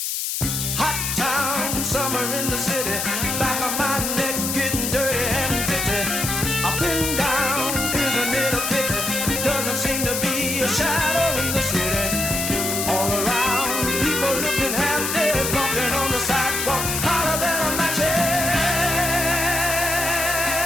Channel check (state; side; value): noise; left; hiss, 1 dB below the sound